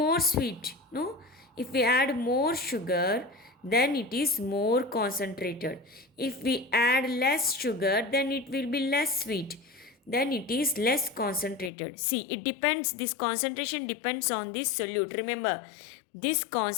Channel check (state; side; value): drops out; right; at 11.7 s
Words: sweet. No, if we add more sugar, then it is more concentrated. If we add less sugar, then it will be less sweet. Then it is less concentrated. See, it depends, this concentration depends on this solute. Remember, this